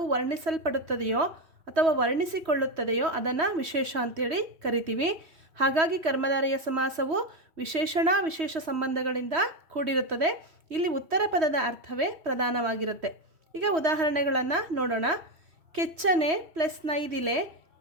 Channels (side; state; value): left; late; 3.1 ms